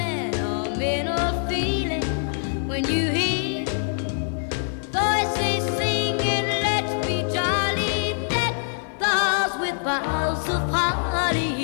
feeling when you hear voices singing, let's be jolly, deck the halls with boughs of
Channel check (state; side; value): silent; right; digital silence